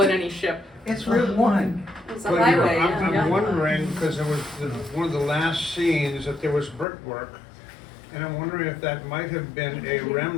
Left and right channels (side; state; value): right; drops out; at 6.9 s